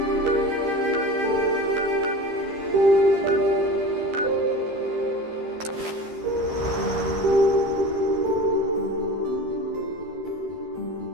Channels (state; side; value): late; left; 13 ms